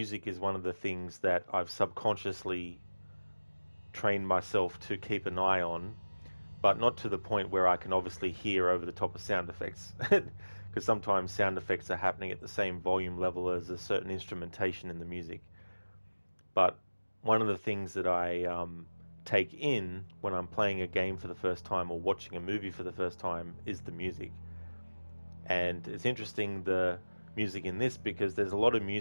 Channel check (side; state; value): both; inverted; correlation -1.00